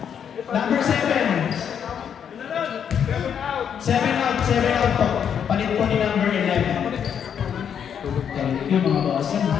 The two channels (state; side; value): quieter; right; 8.1 dB